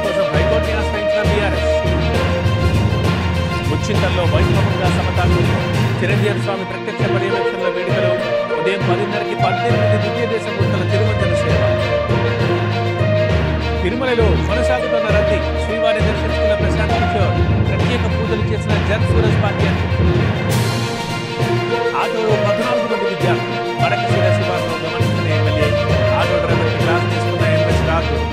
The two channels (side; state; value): both; identical; correlation 1.00